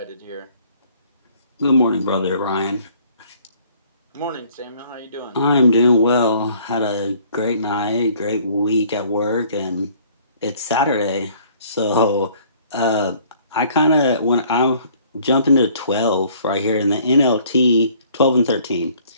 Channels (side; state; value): both; inverted; correlation -0.57